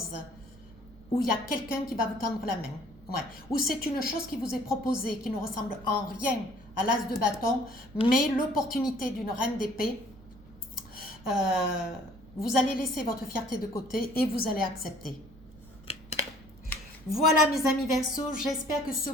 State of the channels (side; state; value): right; noise; rumble, 22 dB below the sound